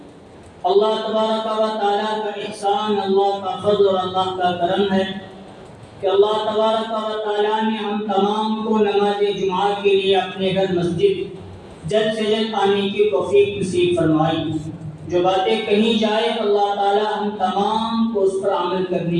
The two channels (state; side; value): identical; both; correlation 1.00